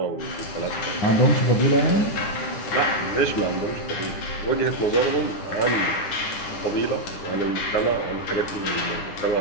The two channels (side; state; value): right; late; 9.9 ms